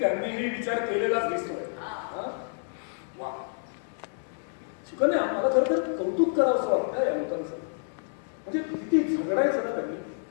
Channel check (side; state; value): right; silent; digital silence